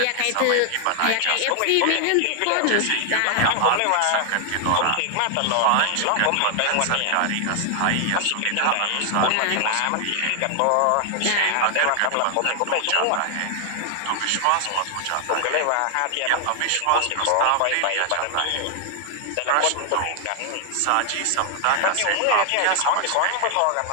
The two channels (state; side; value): different; both; correlation 0.00